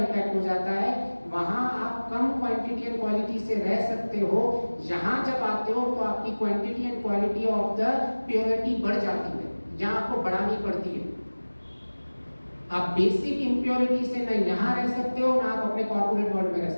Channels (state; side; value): inverted; both; correlation -1.00